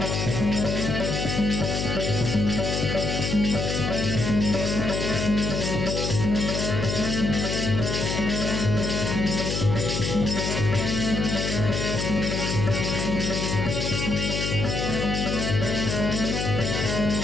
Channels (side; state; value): left; noise; hum, 1 dB below the sound